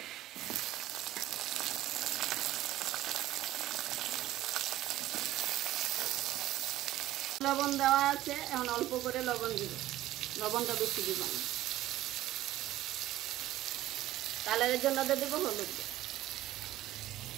লবণ দেওয়া আছে, এখন অল্প করে লবণ দিব, লবণটা বেশি দিব না। কালারের জন্য দিয়ে দিব হলুদ,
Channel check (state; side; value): quieter; left; 14.7 dB